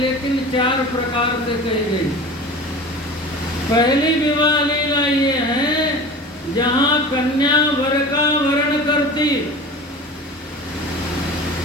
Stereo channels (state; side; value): normal; both; correlation 0.36